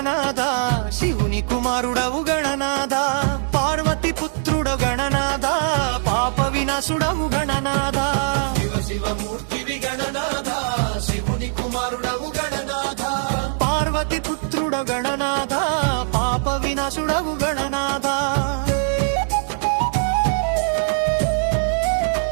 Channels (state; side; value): silent; left; digital silence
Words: శివుని కుమారుడవు గణనాథ పార్వతి పుత్రుడ గణనాథ పాప వినాశుడవు గణనాథ శివ శివమూర్తివి గణనాథ శివుని కుమారుడవు గణనాథ పార్వతి పుత్రుడ గణనాథ పాప వినాశుడవు గణనాథ